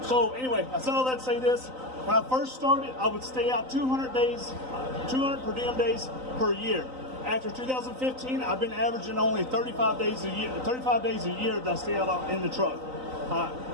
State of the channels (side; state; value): left; late; 3.9 ms